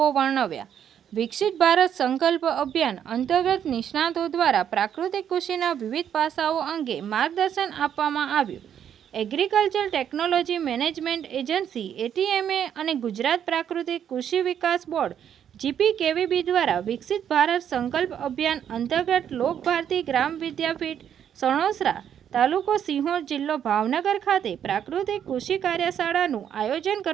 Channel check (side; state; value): left; quieter; 9.1 dB